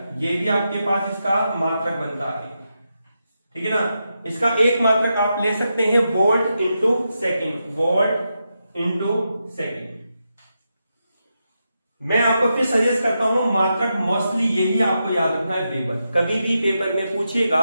ये भी आपके पास इसका मात्रक बनता है, ठीक है ना। इसका एक मात्रक आप ले सकते हैं volt into second, volt into second. मैं आपको फिर सजेस्ट करता हूं मात्रक मोस्टली यही आपको याद रखना है, वेबर। कभी भी पेपर में पूछेगा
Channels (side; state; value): both; inverted; correlation -0.86